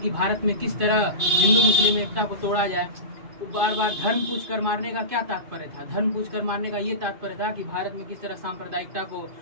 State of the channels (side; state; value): left; late; 2.5 ms